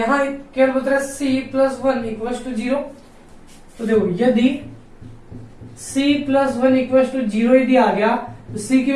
केवल बता रहा है सी प्लस 1 इक्वल टू 0। तो देखो यदि c प्लस 1 इक्वल टू 0 यदि आ गया तो c की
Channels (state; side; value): identical; both; correlation 1.00